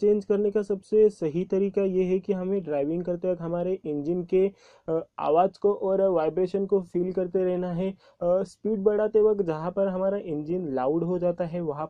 करने का सबसे सही तरीका ये है कि हमें ड्राइविंग करते वक्त हमारे इंजन के आवाज़ को और वाइब्रेशन को फील करते रहना है। स्पीड बढ़ाते वक्त जहाँ पर हमारा इंजन लाउड हो जाता है वहाँ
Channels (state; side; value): identical; both; correlation 1.00